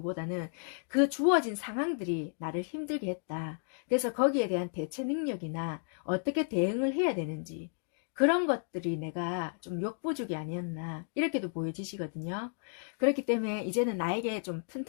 그 주어진 상황들이 나를 힘들게 했다. 그래서 거기에 대한 대처 능력이나 어떻게 대응을 해야 되는지 그런 것들이 내가 좀 역부족이 아니었나 이렇게도 보여지시거든요. 그렇기 때문에 이제는 나에게 좀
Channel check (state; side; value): silent; right; 56 dB below the other